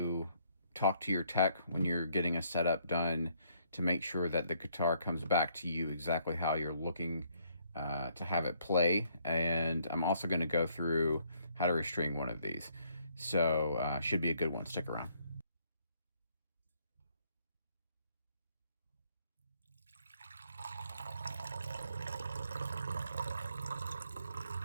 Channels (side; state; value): both; inverted; correlation -0.68